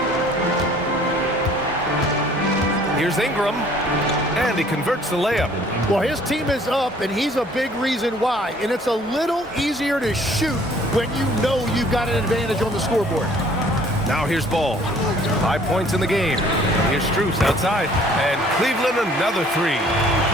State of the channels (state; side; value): normal; both; correlation 0.56